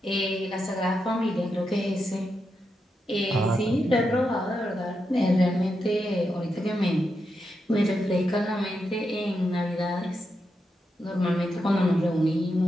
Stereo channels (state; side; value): normal; both; correlation 0.85